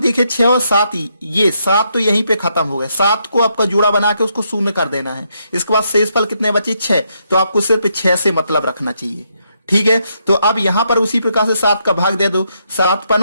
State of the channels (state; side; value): inverted; both; correlation -0.77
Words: 6 और 7, ये 7 तो यहीं पे खत्म हो गए, 7 को आपका जोड़ा बना के उसको शून्य कर देना है। इसके बाद शेषफल कितने बचे 6, तो आपको सिर्फ 6 से मतलब रखना चाहिए। ठीक है, तो अब यहां पर उसी प्रकार से 7 का भाग दे दो, 7